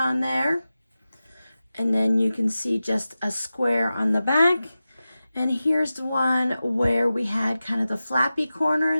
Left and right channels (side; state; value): both; inverted; correlation -0.94